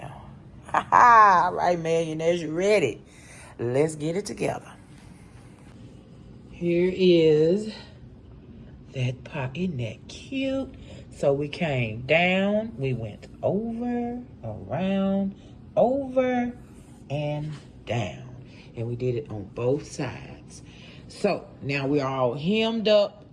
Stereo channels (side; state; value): both; identical; correlation 1.00